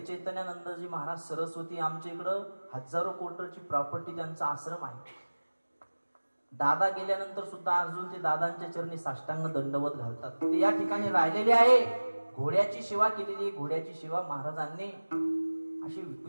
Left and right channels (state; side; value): inverted; both; correlation -1.00